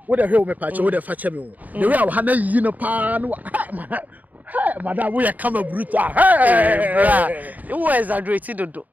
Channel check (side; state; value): left; late; 0.078 ms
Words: Wo de hwe wo me pache wo de fache me wo. The way wo ha na yi no pa no. Hey, madam, we are come brutal. Hey, bra. You exaggerate dodo.